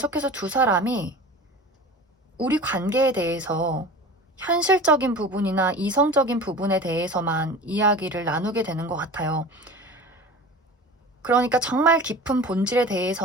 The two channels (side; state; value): both; normal; correlation 0.36